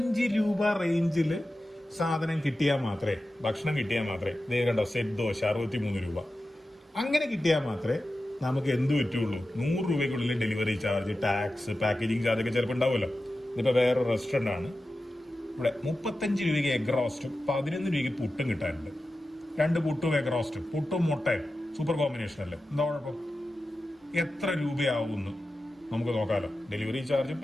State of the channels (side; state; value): both; normal; correlation 0.93